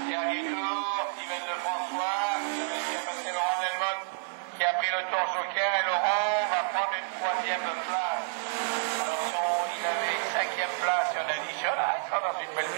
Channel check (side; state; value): left; silent; digital silence